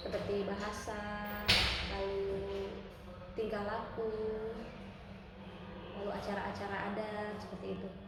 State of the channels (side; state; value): both; identical; correlation 1.00